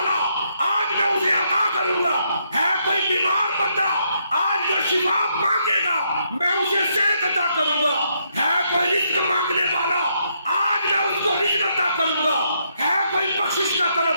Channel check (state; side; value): inverted; both; correlation -0.75